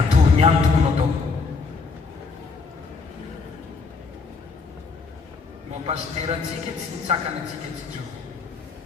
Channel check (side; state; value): right; quieter; 4.4 dB